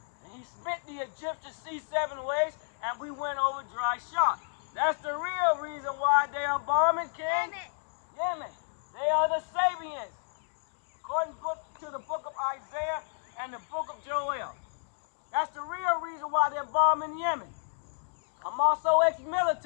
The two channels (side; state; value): right; silent; digital silence